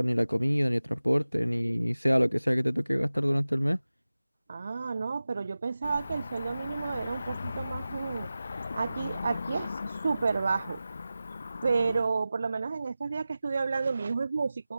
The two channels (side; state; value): both; inverted; correlation -0.96